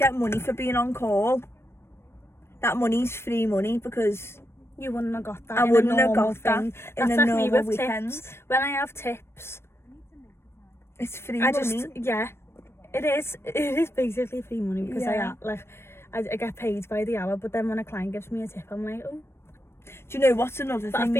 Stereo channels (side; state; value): right; late; 0.12 ms